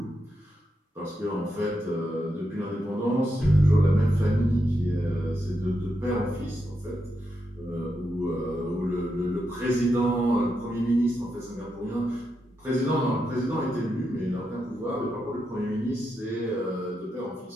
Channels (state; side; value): normal; both; correlation 0.84